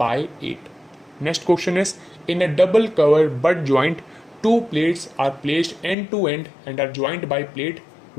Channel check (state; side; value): drops out; right; at 6.0 s